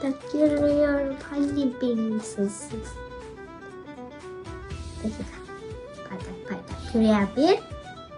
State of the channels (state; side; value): identical; both; correlation 1.00